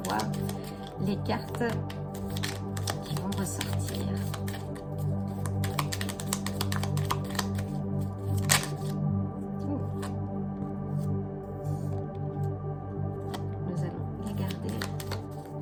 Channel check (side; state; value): both; identical; correlation 1.00